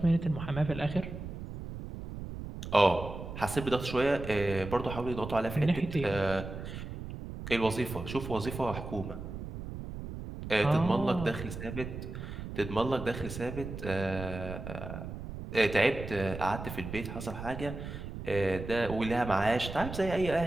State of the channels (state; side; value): noise; right; rumble, 8 dB below the sound